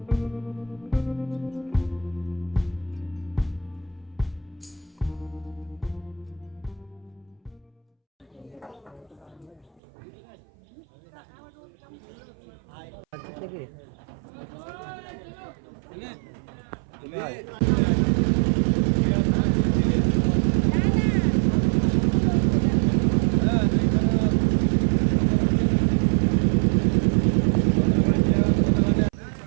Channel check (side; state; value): left; drops out; at 9.8 s